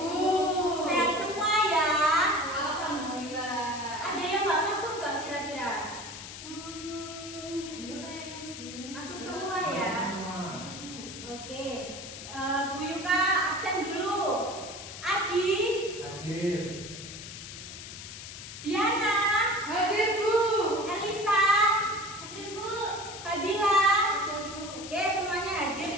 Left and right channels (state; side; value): noise; left; hiss, 11 dB below the sound